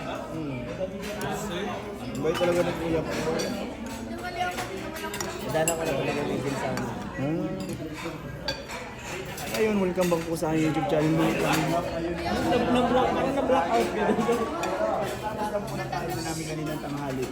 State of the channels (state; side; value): identical; both; correlation 1.00